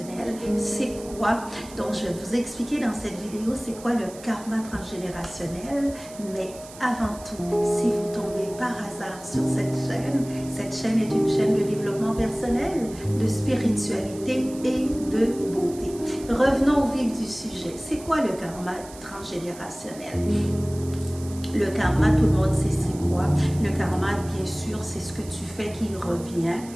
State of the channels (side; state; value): right; noise; hiss, 18 dB below the sound